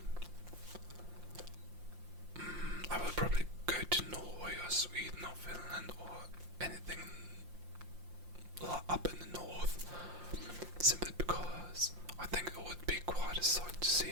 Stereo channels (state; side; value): late; left; 5.7 ms